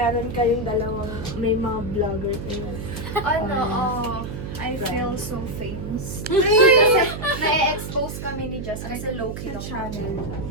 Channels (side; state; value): right; noise; hum, 7 dB below the sound